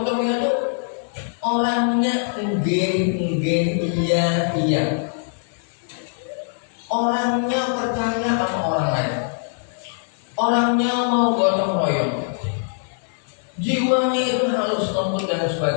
itu orangnya iya. Orangnya percaya sama orang lain. Orangnya mau gotong royong. Jiwanya itu halus lembut dan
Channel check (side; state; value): right; silent; digital silence